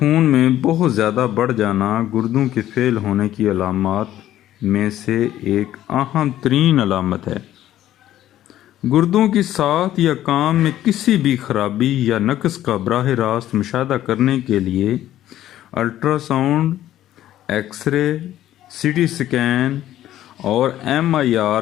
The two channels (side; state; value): right; quieter; 12.9 dB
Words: میں بہت زیادہ بڑھ جانا گردوں کے فیل ہونے کی علامات میں سے ایک اہم ترین علامت ہے۔ گردوں کی ساخت یا کام میں کسی بھی خرابی یا نقص کا براہ راست مشاہدہ کرنے کے لیے ultra sound, X ray, CT scan اور MIR